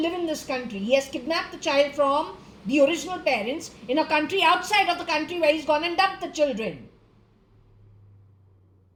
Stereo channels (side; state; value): both; identical; correlation 1.00